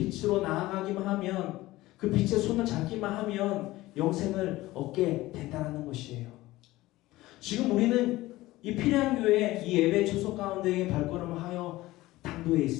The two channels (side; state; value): right; quieter; 17.9 dB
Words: 나아가기만 하면, 그 빛의 손을 잡기만 하면 영생을 얻게 된다는 것이에요. 지금 우리는 이 피레안 교회 이 예배 초소 가운데에 발걸음을 하여 당도에